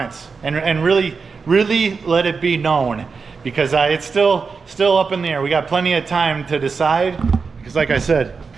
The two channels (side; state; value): left; quieter; 5.0 dB